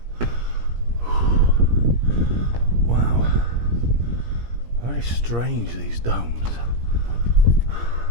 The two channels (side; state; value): left; late; 17 ms